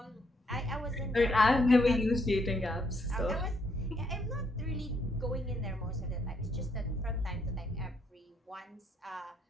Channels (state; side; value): normal; both; correlation 0.73